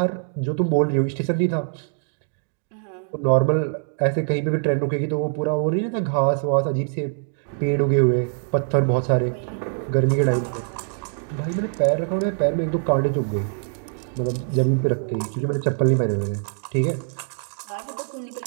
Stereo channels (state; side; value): silent; left; digital silence